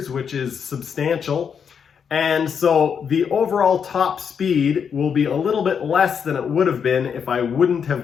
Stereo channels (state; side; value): quieter; right; 7.0 dB